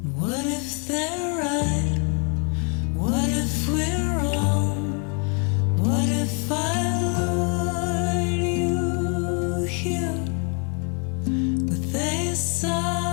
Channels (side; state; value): right; quieter; 37.5 dB